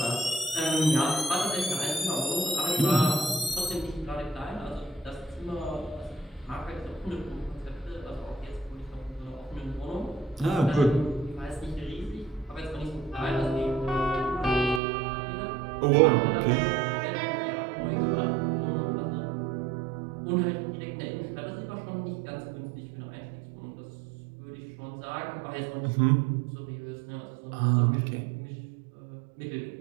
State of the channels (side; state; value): left; drops out; at 14.8 s